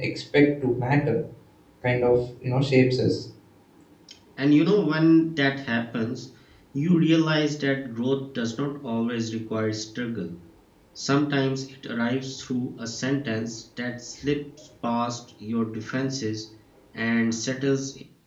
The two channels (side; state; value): both; identical; correlation 1.00